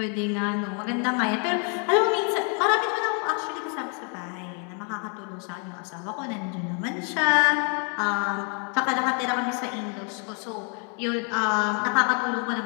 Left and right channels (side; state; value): right; quieter; 39.3 dB